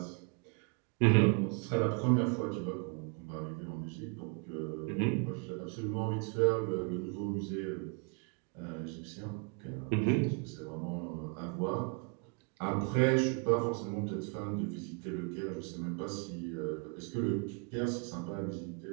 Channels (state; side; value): quieter; left; 35.6 dB